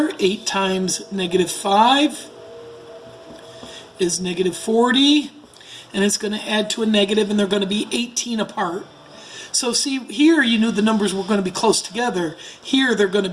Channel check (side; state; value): both; identical; correlation 1.00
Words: 8 times negative 5 is negative 40, and it's going to add to a negative, and they're going to be 18 apart. So see, here you knew the numbers were going to be close together. Here they're going to